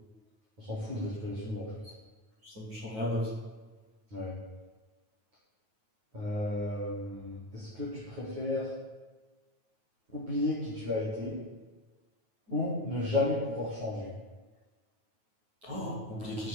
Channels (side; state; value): left; late; 9.2 ms